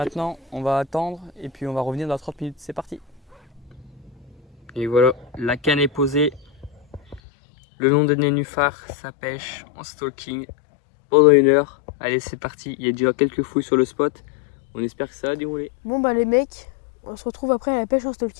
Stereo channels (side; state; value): right; drops out; at 7.2 s